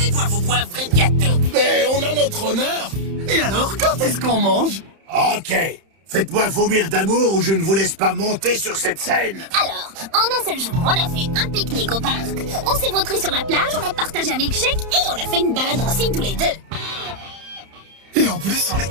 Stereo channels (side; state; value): left; late; 31 ms